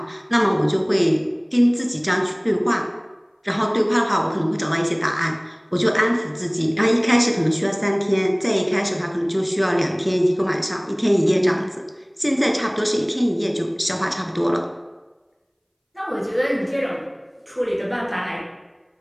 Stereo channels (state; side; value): identical; both; correlation 1.00